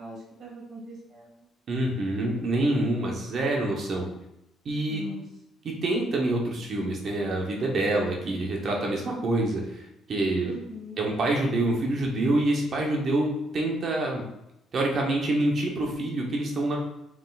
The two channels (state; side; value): normal; both; correlation 0.74